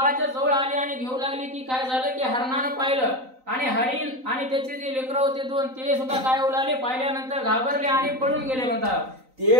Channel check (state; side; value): late; left; 3.9 ms